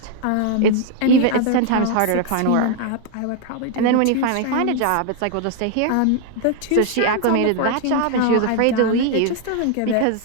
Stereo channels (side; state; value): both; different; correlation 0.00